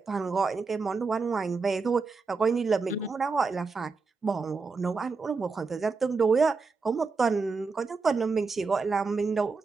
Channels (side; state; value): left; quieter; 4.5 dB